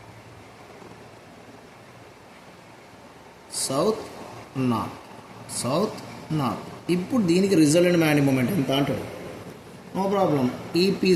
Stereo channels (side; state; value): both; identical; correlation 1.00